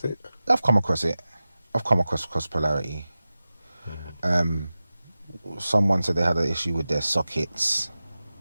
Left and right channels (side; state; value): both; inverted; correlation -0.95